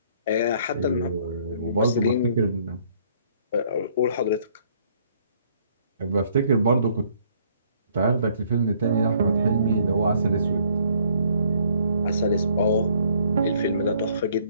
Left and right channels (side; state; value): both; inverted; correlation -0.63